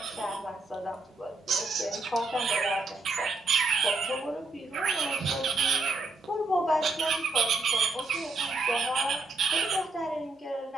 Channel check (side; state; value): left; quieter; 3.4 dB